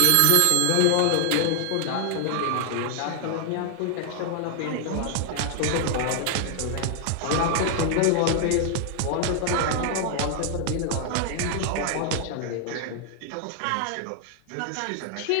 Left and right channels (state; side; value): different; both; correlation 0.00